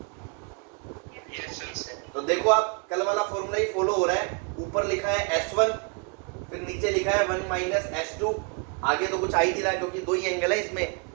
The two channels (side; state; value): left; quieter; 36.2 dB